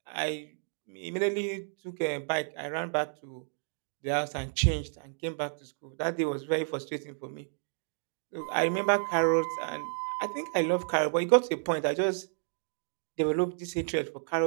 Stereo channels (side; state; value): left; silent; digital silence